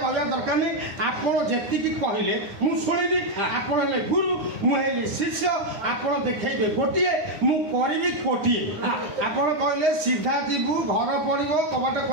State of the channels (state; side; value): late; left; 9.8 ms